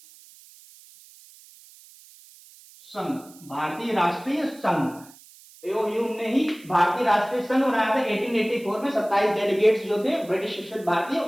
संघ, भारतीय राष्ट्रीय संघ। एओयू ने ही भारतीय राष्ट्रीय संघ बनाया था 1884 में, 27 डेलीगेट्स जो थे ब्रिटिश शिक्षित भारतीय,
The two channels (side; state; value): right; noise; hiss, 23 dB below the sound